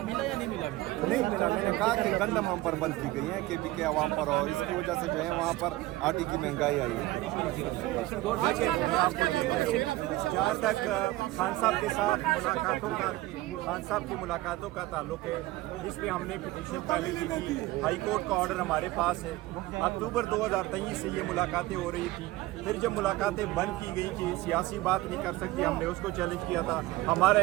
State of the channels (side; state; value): left; quieter; 17.9 dB